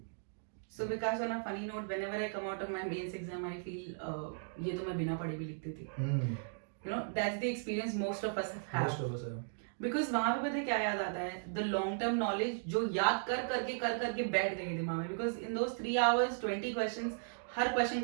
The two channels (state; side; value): silent; left; digital silence